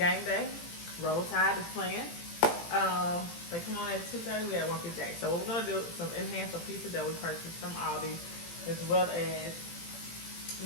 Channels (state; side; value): late; right; 18 ms